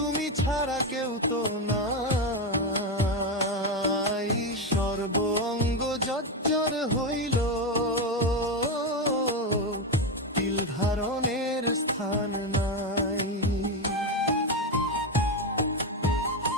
ছাড়া কেউ তো নাই। সর্ব অঙ্গ জর্জর হইল, তিল ধারণের স্থান নাই।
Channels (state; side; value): normal; both; correlation 0.11